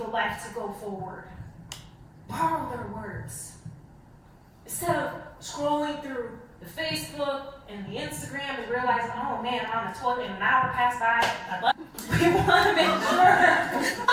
life to go forward. Borrow their words. Instead of scrolling through the Facebook and the Instagram and realizing, oh man, I'm on the toilet and an hour passed by. We want to make sure.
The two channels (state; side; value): identical; both; correlation 1.00